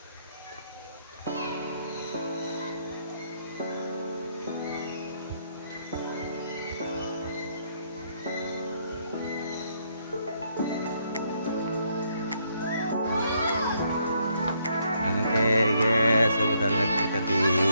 Oke guys, sebentar lagi kita di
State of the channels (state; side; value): inverted; both; correlation -0.72